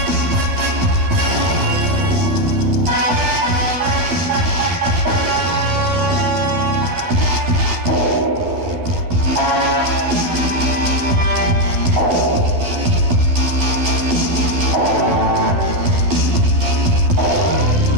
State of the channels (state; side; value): late; left; 12 ms